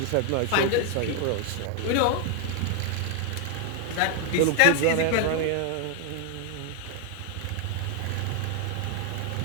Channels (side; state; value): both; different; correlation 0.00